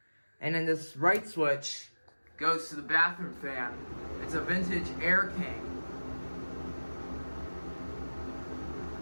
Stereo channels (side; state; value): both; inverted; correlation -1.00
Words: And then this right switch goes to the bathroom fan. It's a vintage Air King.